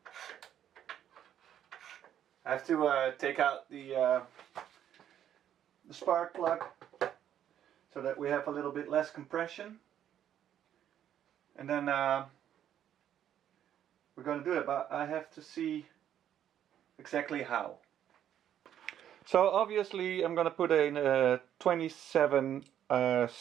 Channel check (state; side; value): quieter; left; 10.3 dB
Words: I have to take out the spark plug so that we have a little bit less compression, and then we're going to do it, but I have to see exactly how. So obviously I'm going to put a 27